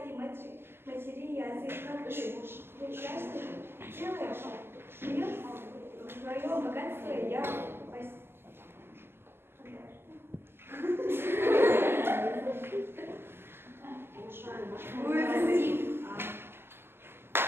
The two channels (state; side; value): late; left; 0.11 ms